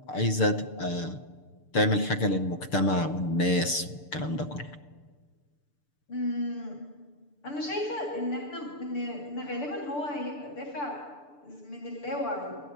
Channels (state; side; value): late; right; 6.8 ms